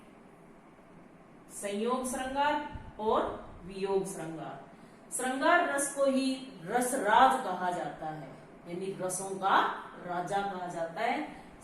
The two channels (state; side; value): identical; both; correlation 1.00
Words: संयोग श्रृंगार और वियोग श्रृंगार। श्रृंगार रस को ही रसराज कहा जाता है, यानी रसों का राजा कहा जाता है।